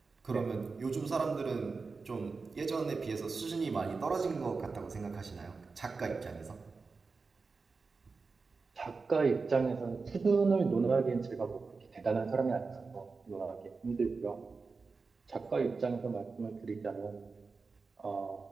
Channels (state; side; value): quieter; left; 4.4 dB